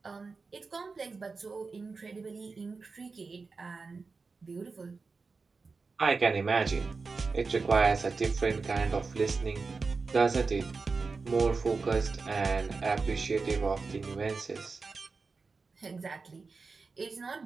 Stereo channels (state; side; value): quieter; left; 4.4 dB